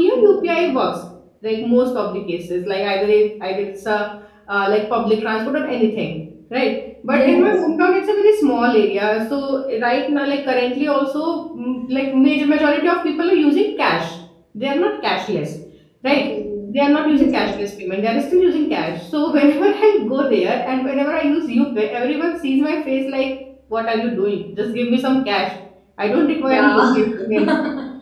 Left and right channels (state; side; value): identical; both; correlation 1.00